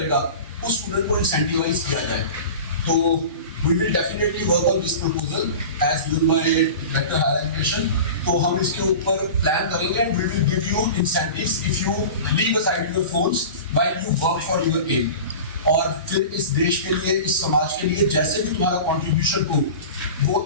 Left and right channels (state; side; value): inverted; both; correlation -0.34